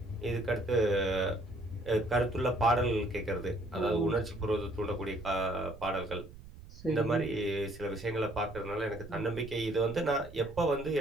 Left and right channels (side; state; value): right; noise; rumble, 16 dB below the sound